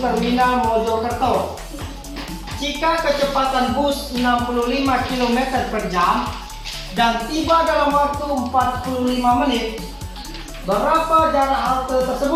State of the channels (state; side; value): identical; both; correlation 1.00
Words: Mojokerto. Jika kecepatan bus 65 km per jam dan tiba dalam waktu 45 menit, berapa jarak halte